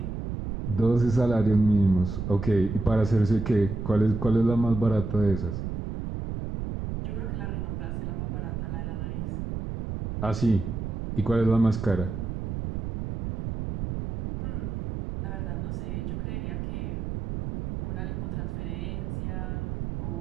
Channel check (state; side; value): noise; right; rumble, 4 dB below the sound